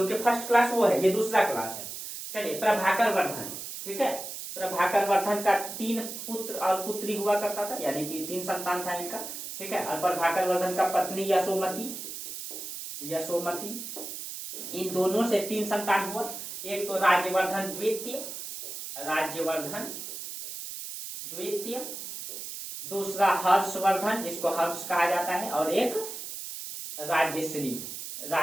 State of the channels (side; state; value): right; noise; hiss, 8 dB below the sound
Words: फर्स्ट क्लास वो है, ये दूसरा क्लास है। चलिए प्रभाकर वर्धन, ठीक है, प्रभाकर वर्धन का 3 पुत्र और पुत्री हुआ करता था, यानी कि 3 संतान था इनका, ठीक है। और प्रभाकर वर्धन का पत्नी यशोमती, इन दोनों से 3 संतान हुआ। एक तो राज्यवर्धन द्वितीय, दूसरा हर्षवर्धन जिसको हर्ष कहा जाता है, और एक राज्यश्री